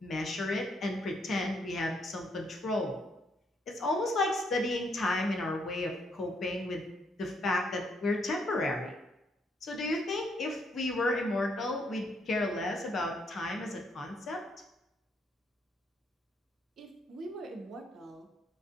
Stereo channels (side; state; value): both; normal; correlation 0.72